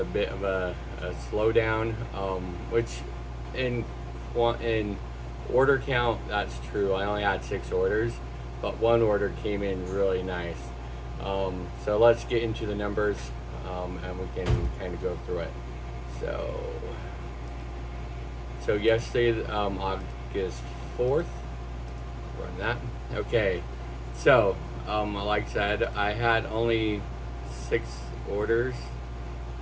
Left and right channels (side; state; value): both; identical; correlation 1.00